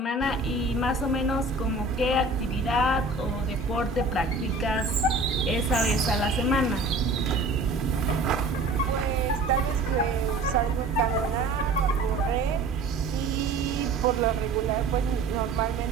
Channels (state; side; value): quieter; left; 3.2 dB